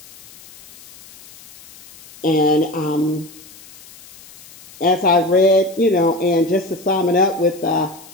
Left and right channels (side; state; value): left; noise; hiss, 21 dB below the sound